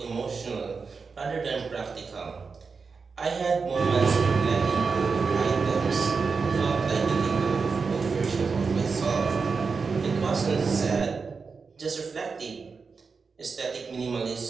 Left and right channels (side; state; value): left; quieter; 5.0 dB